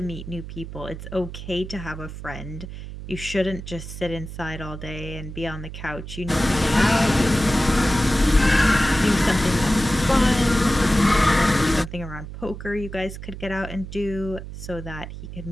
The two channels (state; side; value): noise; right; hum, 10 dB below the sound